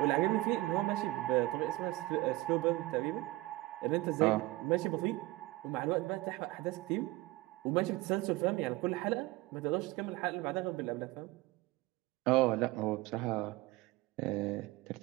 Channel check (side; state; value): left; quieter; 19.5 dB